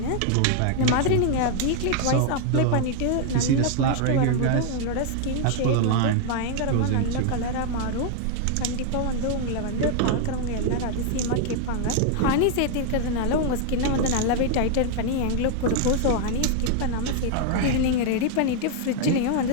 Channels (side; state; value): both; different; correlation 0.00